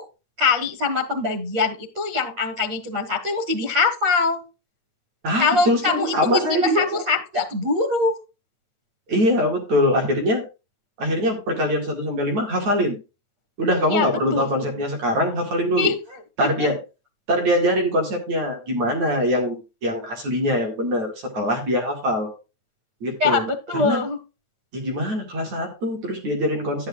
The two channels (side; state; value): left; late; 8.5 ms